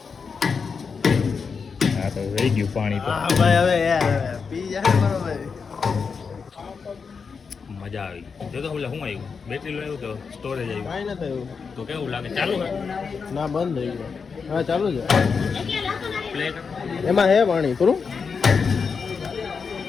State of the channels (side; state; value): right; quieter; 5.5 dB